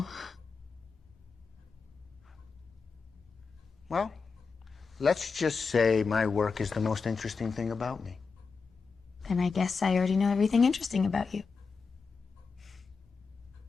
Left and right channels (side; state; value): right; quieter; 4.9 dB